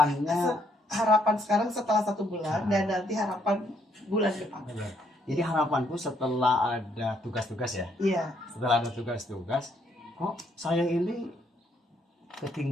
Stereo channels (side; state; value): both; normal; correlation 0.71